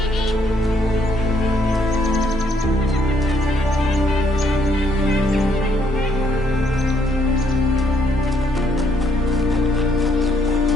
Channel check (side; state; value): both; normal; correlation 0.70